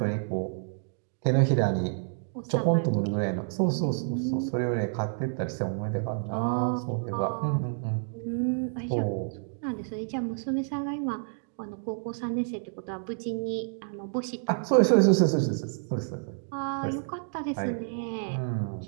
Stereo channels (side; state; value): left; silent; digital silence